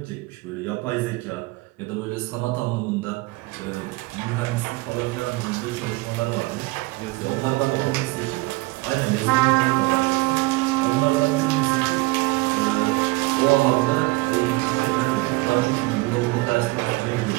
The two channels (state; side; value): quieter; left; 22.7 dB